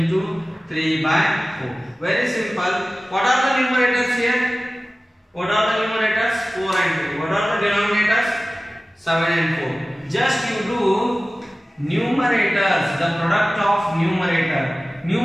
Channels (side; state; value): both; normal; correlation 0.97